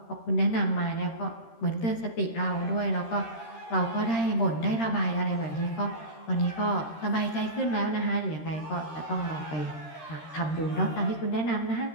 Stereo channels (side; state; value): right; late; 13 ms